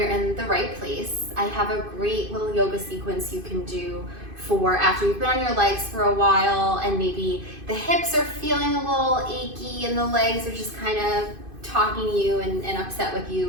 in the right place. I have a great little yoga sequence you can do for after you've been on your legs for a while and maybe the hips are feeling a little achy and the legs are just kind of talking to you and upset with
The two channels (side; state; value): left; late; 2.5 ms